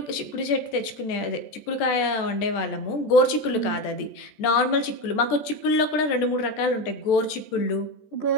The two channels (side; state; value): right; late; 14 ms